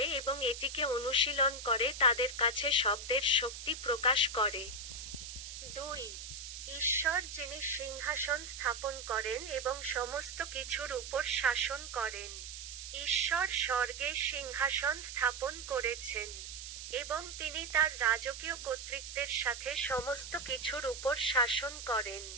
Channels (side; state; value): right; noise; hiss, 10 dB below the sound